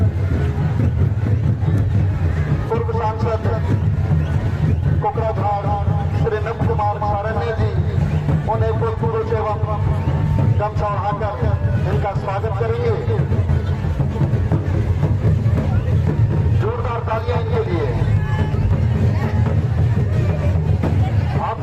कोकराझार श्री नव कुमार सारण्य जी, उन्हें पुष्प एवं गमछा उड़ाकर इनका स्वागत करेंगे। जोरदार तालियां इनके लिए। आप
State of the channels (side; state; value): both; identical; correlation 1.00